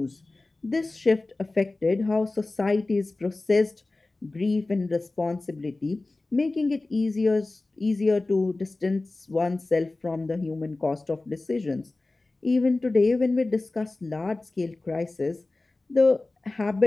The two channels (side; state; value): right; quieter; 3.1 dB